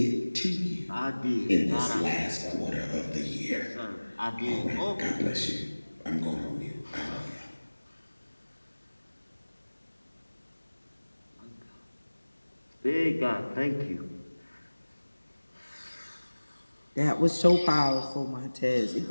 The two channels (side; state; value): both; inverted; correlation -1.00